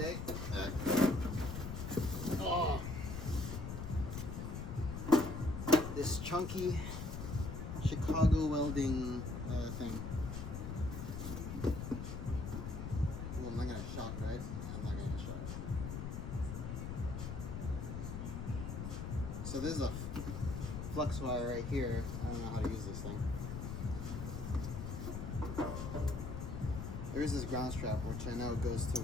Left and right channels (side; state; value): left; noise; rumble, 5 dB below the sound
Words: This chunky Chicago welding thing. Well, I'm not gonna shock, right? I'm not gonna get shocked. So this is a flux wire right here. I don't know how to use this thing. There is this ground strap, which I know goes to